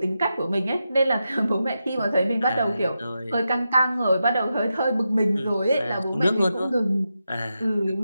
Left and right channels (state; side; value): inverted; both; correlation -0.88